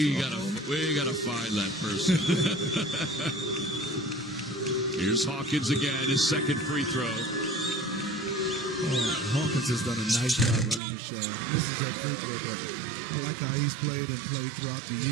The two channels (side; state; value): left; drops out; at 10.8 s